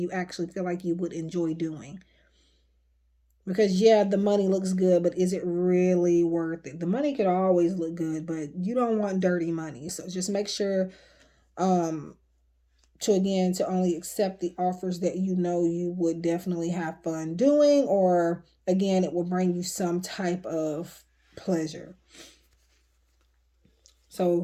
actually feel like you would enjoy doing. Because yeah, the money looks good, but is it really worth it? The money could always look good, but you don't want dirty money. So just make sure to only accept the offers that you know you would definitely have fun doing, or again, it will bring you some type of pleasure.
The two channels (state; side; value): identical; both; correlation 1.00